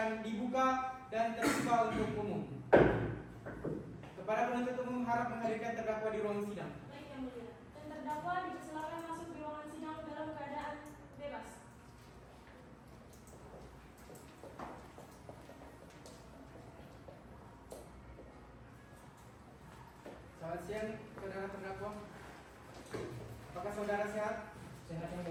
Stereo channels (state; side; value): identical; both; correlation 1.00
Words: dibuka dan terbuka untuk umum. Kepada penuntut umum harap menghadirkan terdakwa di ruang sidang. Baik, Yang Mulia. Dan terdakwa dipersilakan masuk di ruangan sidang dalam keadaan bebas. Selamat siang, saudara terdakwa. Apakah saudara sehat? Sehat yang